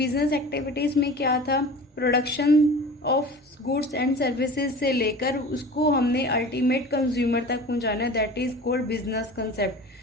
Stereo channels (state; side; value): normal; both; correlation 0.38